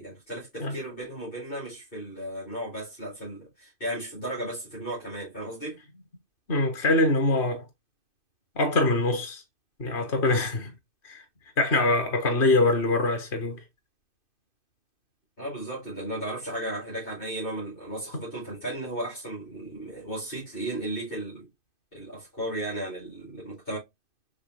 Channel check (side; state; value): right; late; 2.5 ms